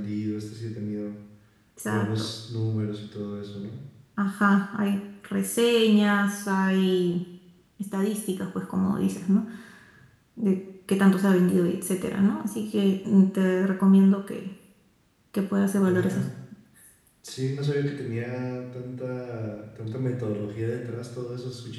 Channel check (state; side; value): identical; both; correlation 1.00